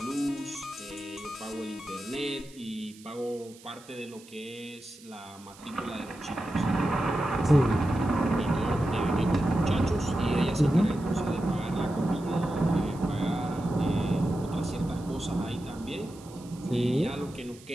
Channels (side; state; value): right; noise; hiss, 22 dB below the sound